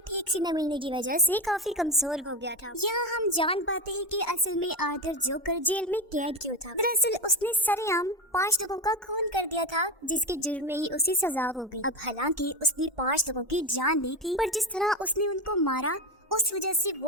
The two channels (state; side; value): normal; both; correlation 0.16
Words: ठीक से न मिलने की वजह से काफी कमजोर हो गया था। यहाँ हम जान पाते हैं कि असल में आर्थर जोकर जेल में कैद क्यों था। दरअसल उसने सरेआम 5 लोगों का खून कर दिया था, जिसके जुर्म में ही उसे सजा हो गई। अब हालांकि उसने 5 लोगों की जान ली थी, पर जिस तरह उसने उनको मारा उस वजह से